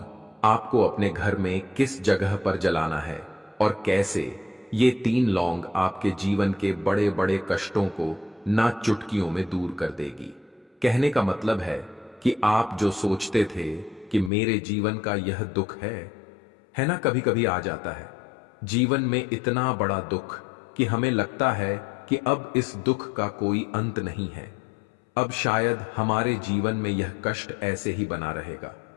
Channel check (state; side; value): drops out; right; at 14.3 s